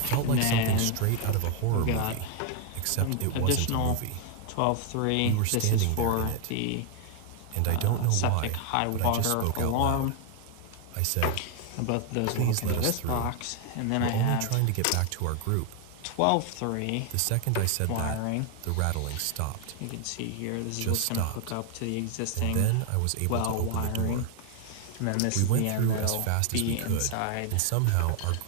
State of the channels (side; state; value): both; different; correlation 0.01